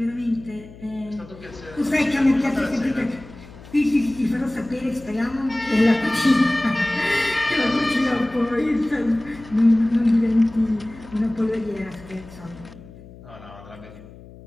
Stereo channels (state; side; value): noise; left; hum, 19 dB below the sound